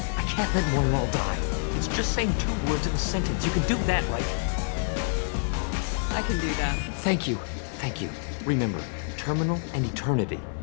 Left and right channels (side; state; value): right; silent; digital silence